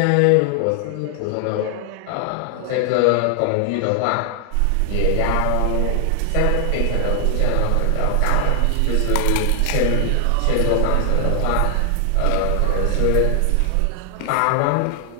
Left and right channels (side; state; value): both; different; correlation 0.00